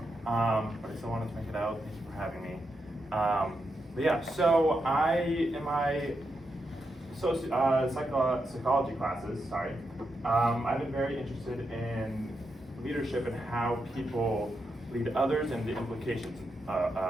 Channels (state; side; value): normal; both; correlation 0.85